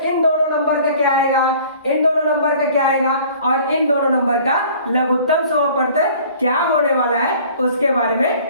इन दोनों नंबर का क्या आएगा, इन दोनों नंबर का क्या आएगा और इन दोनों नंबर का लघुत्तम समापवर्तक क्या होने वाला है उसके बारे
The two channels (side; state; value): both; inverted; correlation -0.50